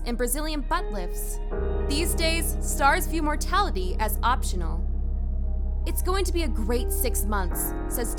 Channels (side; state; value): both; identical; correlation 1.00